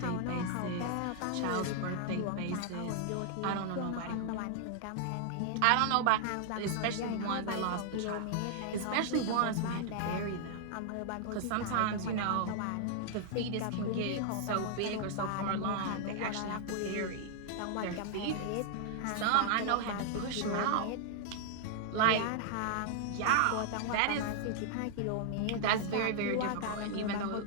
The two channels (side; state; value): both; different; correlation -0.01